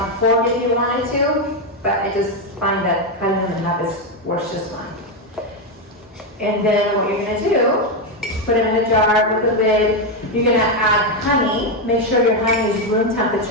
fork if you wanted to, but I just find that cutting them in half is worth just fine. And then what you're going to do, put them in a jar with a lid. You're going to add honey. Make sure your honey is room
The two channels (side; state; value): both; normal; correlation 0.06